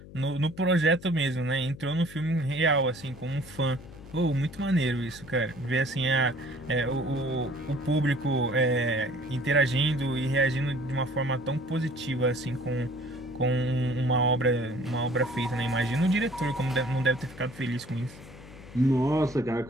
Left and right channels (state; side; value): noise; left; hum, 17 dB below the sound